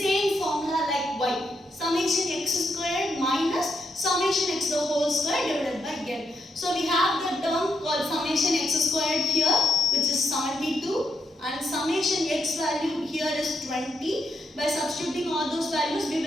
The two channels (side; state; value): both; normal; correlation 0.81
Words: formula like y. Summation x squared minus summation x the whole square divided by n. So we have the term called summation x squared here, which is 72, and summation x value here is 20. By substituting all those values we